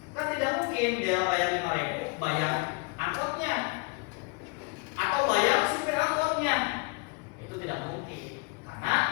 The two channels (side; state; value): right; quieter; 30.3 dB